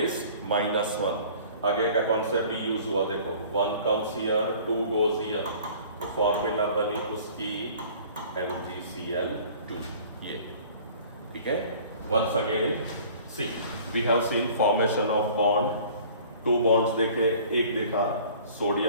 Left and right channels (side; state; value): both; inverted; correlation -0.48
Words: -1। आगे का कॉन्सेप्ट भी यूज हुआ, देखो 1 comes here, 2 goes here, तो फॉर्मूला बनी उसकी MgCl2, ये ठीक है। Once again see we have seen formation of bond, 2 bonds देखे, एक देखा